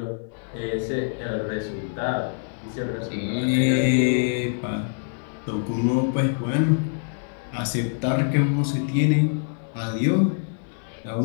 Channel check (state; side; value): silent; right; 62 dB below the other